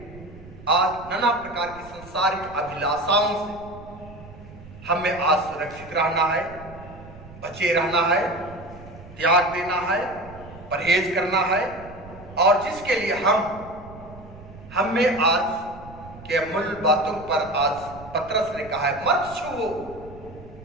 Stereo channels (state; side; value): noise; right; rumble, 18 dB below the sound